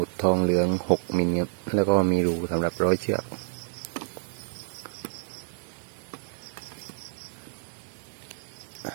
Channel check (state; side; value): silent; left; digital silence